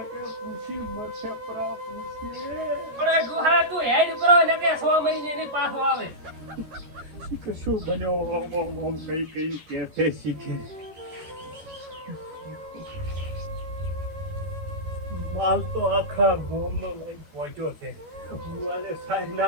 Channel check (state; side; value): late; left; 13 ms